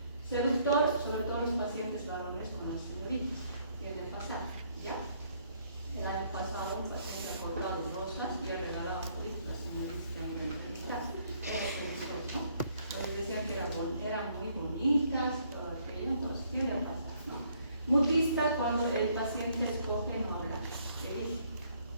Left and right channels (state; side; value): inverted; both; correlation -0.67